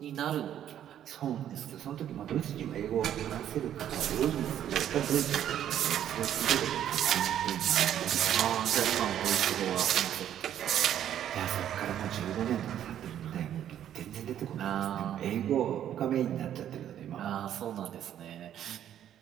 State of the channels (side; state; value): left; quieter; 10.6 dB